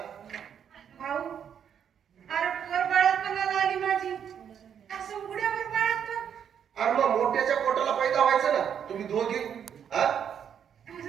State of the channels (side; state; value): left; quieter; 8.3 dB